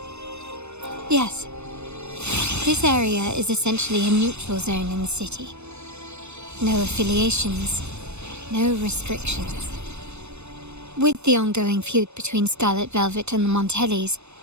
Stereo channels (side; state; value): left; late; 0.81 ms